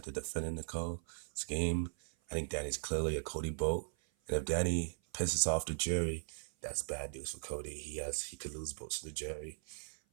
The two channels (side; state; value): left; silent; 52 dB below the other